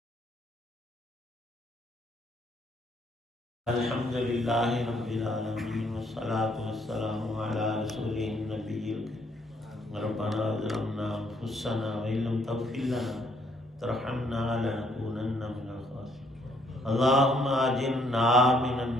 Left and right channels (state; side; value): normal; both; correlation 0.68